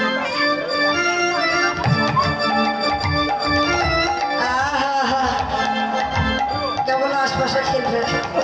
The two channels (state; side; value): identical; both; correlation 1.00